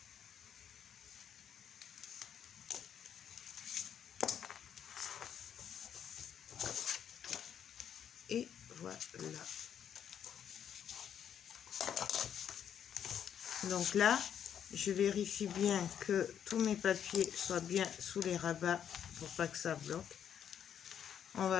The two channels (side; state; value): right; quieter; 8.9 dB